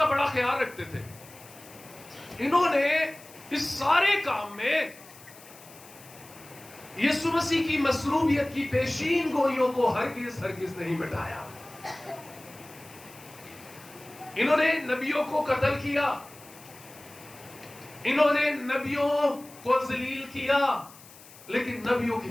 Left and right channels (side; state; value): left; noise; hiss, 21 dB below the sound